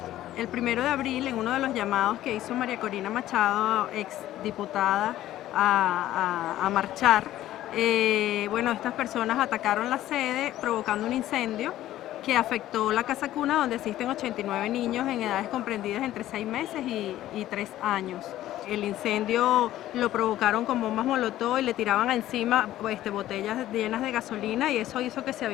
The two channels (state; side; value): quieter; right; 13.8 dB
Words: El 1 de abril, en uno de los llamados que hizo María Corina Machado, ex diputada, a marchar, estas personas atacaron la sede provocando un incendio que afectó la casa cuna, donde asisten 89 niños en edades comprendidas entre 6 meses y 3 años. El incendio lo provocaron con bombas molotov y le tiraban encima botellas llenas de gasolina, y eso hizo que se